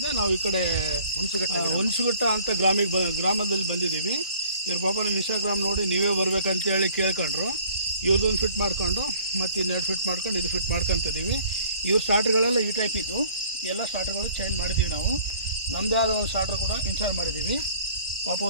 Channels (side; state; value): both; inverted; correlation -0.53